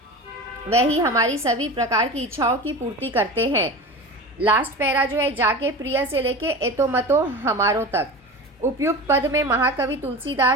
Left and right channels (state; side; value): normal; both; correlation 0.30